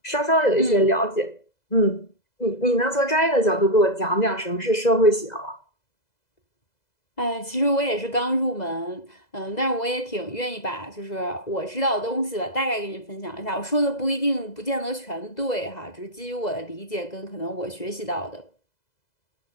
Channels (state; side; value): late; right; 2.0 ms